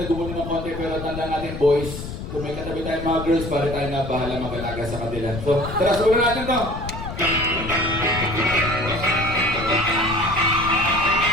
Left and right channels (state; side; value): noise; left; rumble, 8 dB below the sound